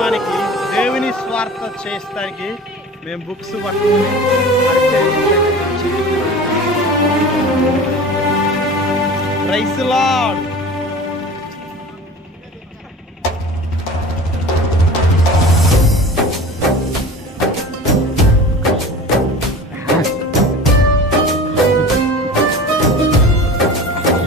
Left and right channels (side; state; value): both; normal; correlation 0.38